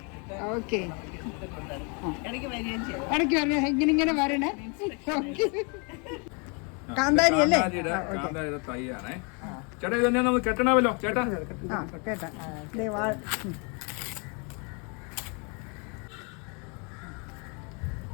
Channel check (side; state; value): right; quieter; 34.1 dB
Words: ഓക്കെ, ഇടയ്ക്ക് വരണേ, ഇങ്ങനെ വരണേ. കാന്താരി അല്ലേ? ചേട്ടാ ഇത് തന്നെ നമുക്ക് കെട്ടണമല്ലോ ചേട്ടാ. കേട്ടാ